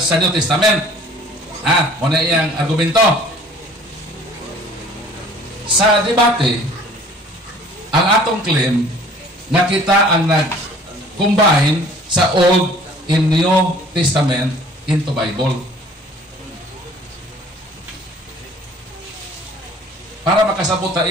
New Testament. Muna iyang argumento. Sa debate, ang atong claim na kita ang nag-combine sa Old and New Testament into Bible. Para makasabot ta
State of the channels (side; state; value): both; normal; correlation 0.52